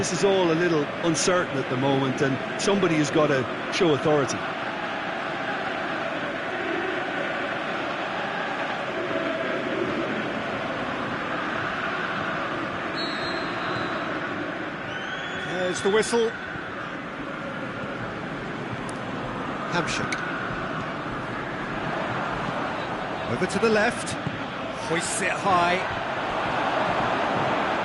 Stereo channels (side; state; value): both; identical; correlation 1.00